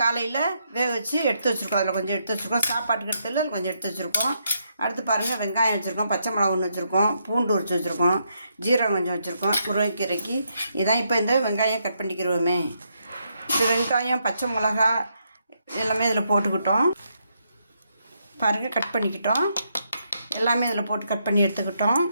காலையில் வேக வச்சு எடுத்து வச்சுருக்கோம். அதில் கொஞ்சம் எடுத்து வச்சுருக்கோம். சாப்பாட்டுக்கு எடுத்துல கொஞ்சம் எடுத்து வச்சுருக்கோம். அடுத்து பாருங்கள், வெங்காயம் வச்சுருக்கோம், பச்சை மிளகா ஒன்று வச்சுருக்கோம், பூண்டு உரிச்சு வச்சுருக்கோம், ஜீரகம் கொஞ்சம் வச்சுருக்கோம். முருங்கைக்கீரைக்கு இதான். இப்போ இந்த வெங்காயம் கட் பண்ணிக்கிறோமே. இந்த வெங்காயம் பச்சை மிளகா எல்லாமே இதில் போட்டுக்கிட்டோம். பாருங்கள், கட் பண்ணிக்கிட்டோம். எல்லாமே இதில் போட்டு கட் பண்ணி எடுத்துக்கிட்டோம்.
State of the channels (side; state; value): both; inverted; correlation -0.78